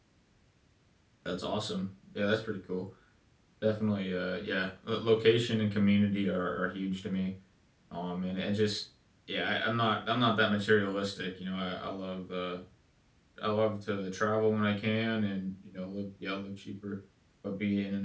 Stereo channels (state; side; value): identical; both; correlation 1.00